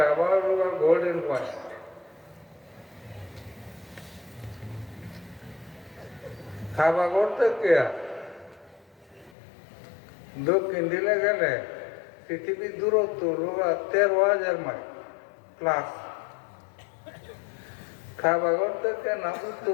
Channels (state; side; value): drops out; right; at 9.3 s